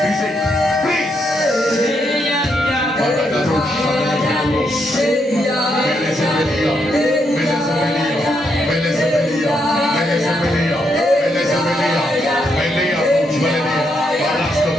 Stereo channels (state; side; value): normal; both; correlation 0.78